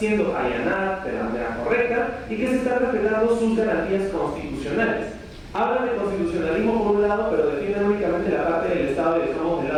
allanada de la manera correcta y que se están respetando sus garantías constitucionales. Hablan de constitucionalismo por un lado, pero defienden únicamente la parte del Estado y dejamos de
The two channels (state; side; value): identical; both; correlation 1.00